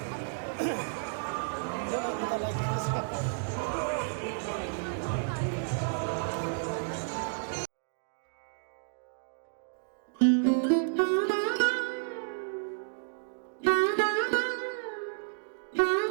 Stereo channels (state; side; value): silent; left; digital silence